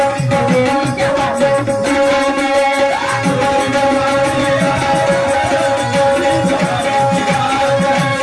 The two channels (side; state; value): both; identical; correlation 1.00